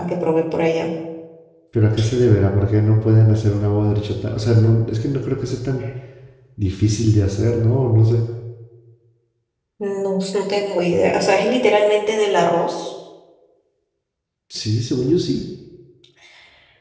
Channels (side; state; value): both; identical; correlation 1.00